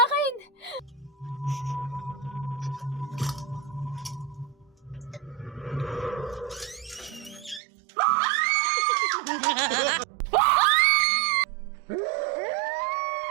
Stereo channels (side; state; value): left; drops out; at 7.6 s